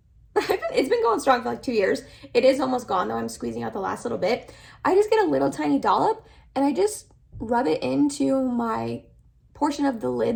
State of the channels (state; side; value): identical; both; correlation 1.00